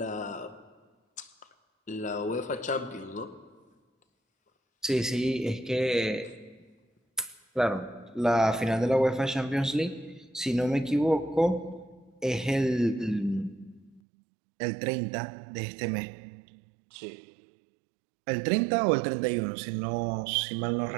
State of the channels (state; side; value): drops out; left; at 14.0 s